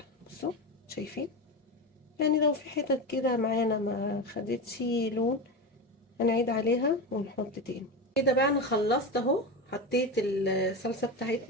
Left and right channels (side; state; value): both; normal; correlation 0.20